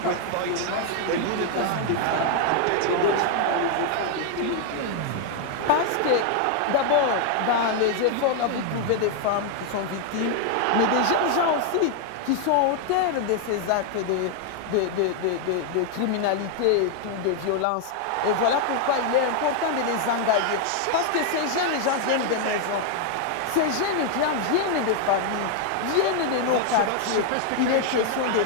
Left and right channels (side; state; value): both; different; correlation 0.00